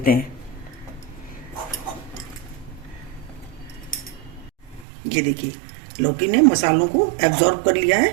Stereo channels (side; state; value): left; drops out; at 4.9 s